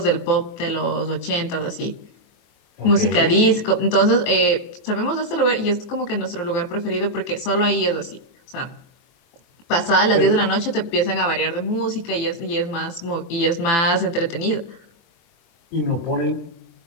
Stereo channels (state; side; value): late; right; 24 ms